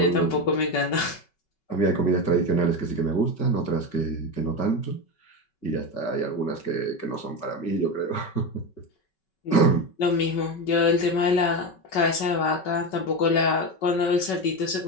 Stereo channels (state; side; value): late; right; 5.3 ms